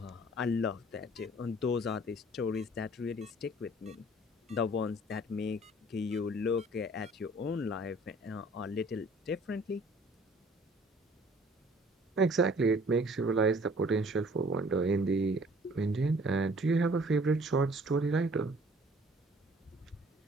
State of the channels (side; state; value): both; normal; correlation 0.54